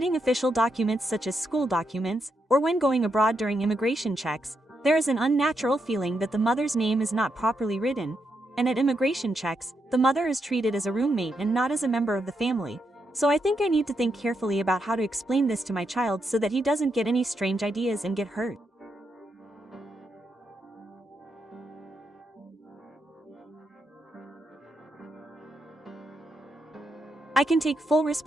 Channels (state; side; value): normal; both; correlation 0.82